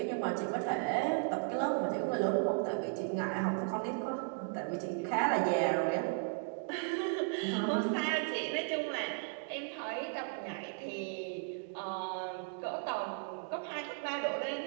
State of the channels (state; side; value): silent; left; 54 dB below the other